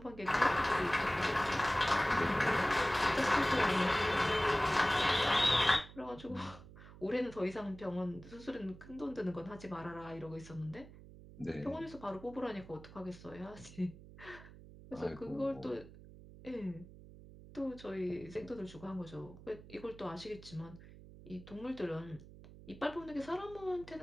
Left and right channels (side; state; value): right; noise; hum, 18 dB below the sound